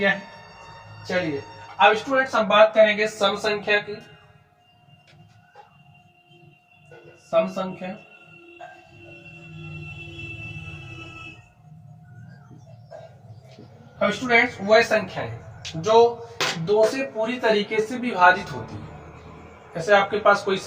है। चलिए अब स्टूडेंट्स हम बात करेंगे सम संख्या की। सम संख्या, अब स्टूडेंट्स वह संख्या है जो 2 से पूरी तरीके से विभाजित होती है। जैसे आपके पास कोई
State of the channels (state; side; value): identical; both; correlation 1.00